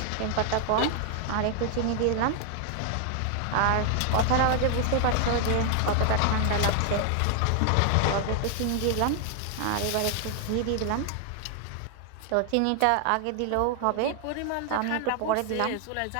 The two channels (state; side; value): different; both; correlation 0.00